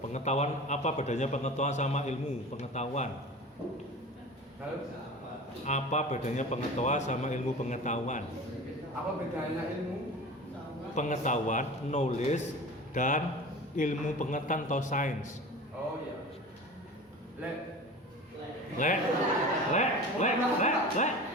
pengetahuan apa bedanya pengetahuan sama ilmu pengetahuan? Halo? Apa bedanya pengetahuan sama ilmu pengetahuan? Apa bedanya ilmu? Pengetahuan, knowledge, dan ilmu pengetahuan atau sains. Oh iya. Le.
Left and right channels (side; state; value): both; normal; correlation 0.35